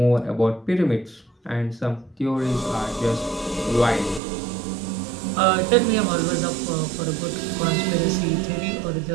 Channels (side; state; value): left; drops out; at 4.2 s